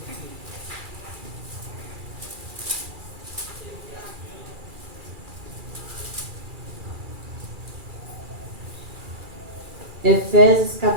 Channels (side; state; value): left; late; 2.4 ms